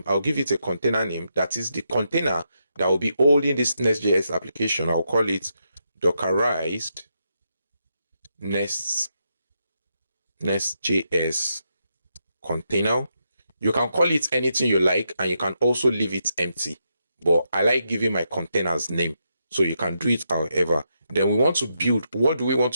I'll give it a container name. That is the container that will be holding this Nest.js application. I'll call it Dockerized Nest.js container. You can call it anything you like, and you can also leave it empty. But I like giving my containers name, so you can do it however. Then we want to build. What do we want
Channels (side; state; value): both; inverted; correlation -0.82